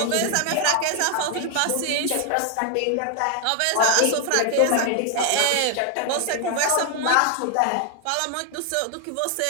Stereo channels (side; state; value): both; different; correlation 0.00